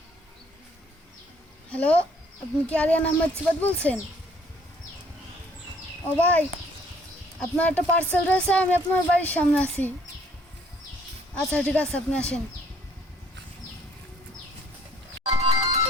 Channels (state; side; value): normal; both; correlation 0.61